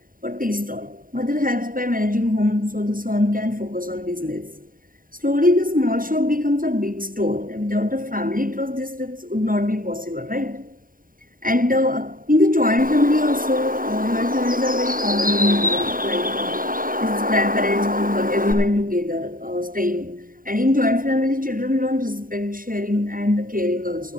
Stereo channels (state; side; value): late; left; 0.41 ms